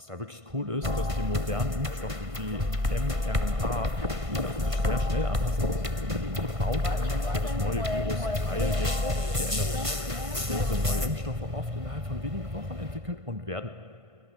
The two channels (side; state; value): left; late; 1.5 ms